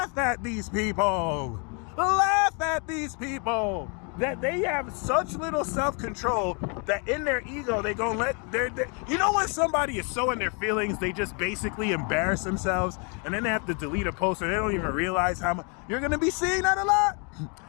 at these people. Laugh at these people. That they have such little self-control that in their ego they gonna let their you know when somebody is so in their feelings they just basically embarrass themselves and then they have to delete a post or they don't even realize how much. You're gonna be seeing that a lot.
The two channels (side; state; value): right; quieter; 35.7 dB